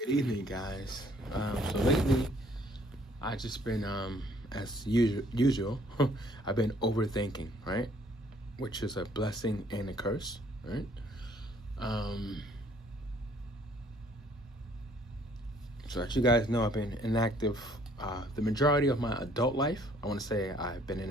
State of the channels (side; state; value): both; normal; correlation 0.61